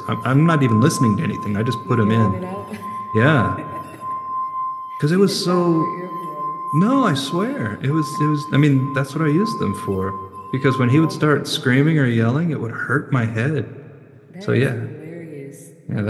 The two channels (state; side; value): identical; both; correlation 1.00